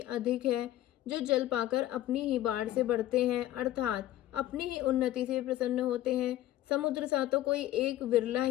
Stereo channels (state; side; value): quieter; right; 14.0 dB